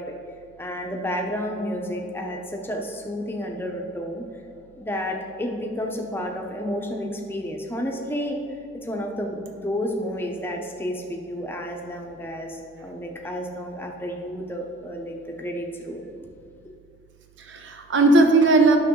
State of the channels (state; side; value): noise; right; hum, 28 dB below the sound